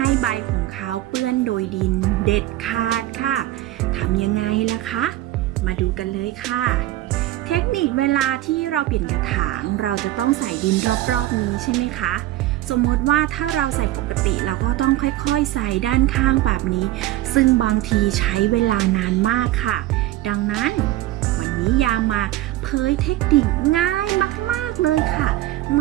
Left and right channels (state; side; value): quieter; left; 15.5 dB